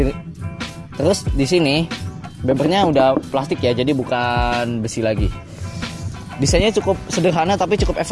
terus di sini bumpernya udah plastik ya, jadi bukan besi lagi. Desainnya cukup sederhana tapi cukup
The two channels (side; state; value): both; identical; correlation 1.00